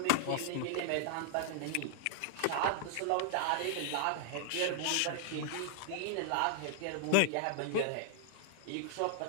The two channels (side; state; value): both; different; correlation -0.01